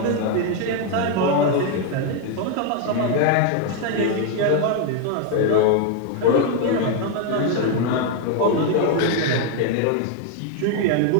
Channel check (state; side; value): different; both; correlation 0.00